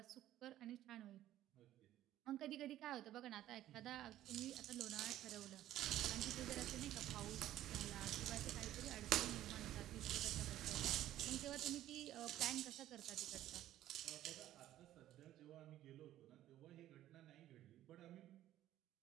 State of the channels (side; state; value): left; quieter; 13.3 dB